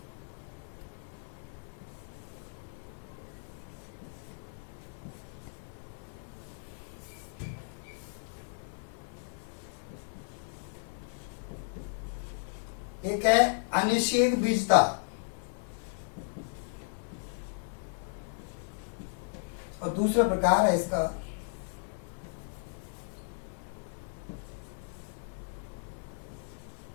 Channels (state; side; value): silent; right; 55 dB below the other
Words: एक है अनिषेक बीजता और दूसरा प्रकार है इसका